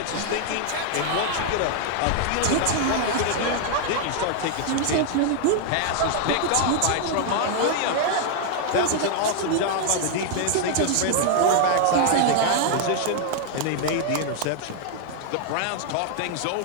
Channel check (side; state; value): both; different; correlation 0.00